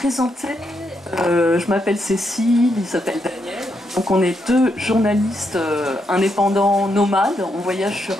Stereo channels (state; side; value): normal; both; correlation 0.80